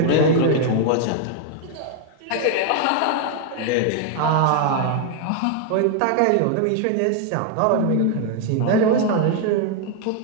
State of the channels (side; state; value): both; different; correlation 0.00